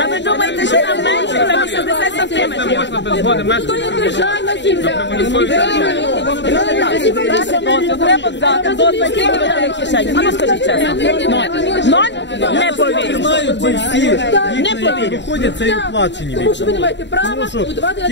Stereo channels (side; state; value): right; late; 0.52 ms